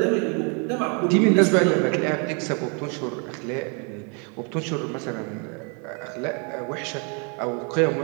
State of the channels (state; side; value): quieter; left; 36.2 dB